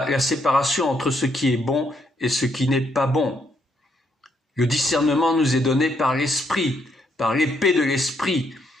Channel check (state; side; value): normal; both; correlation 0.74